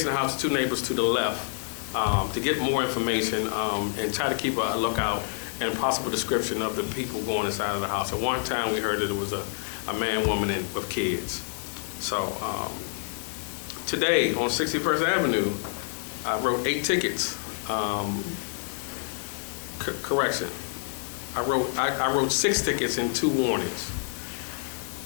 the house, 2 neighbors to the left, to get more information and try to keep a lookout and a possible description of the people going inside of the house. At one time we heard that it was a man, woman, and with kids. So today on 61st Avenue, I wrote 8 tickets. Correction. I wrote 6 tickets and 2 warnings.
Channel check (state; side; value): silent; right; 60 dB below the other